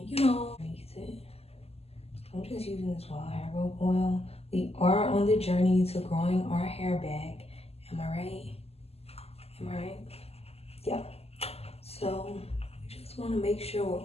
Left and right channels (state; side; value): late; right; 0.29 ms